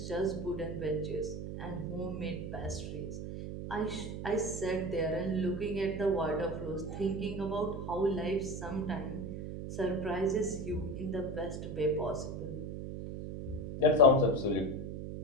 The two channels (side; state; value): right; noise; hum, 6 dB below the sound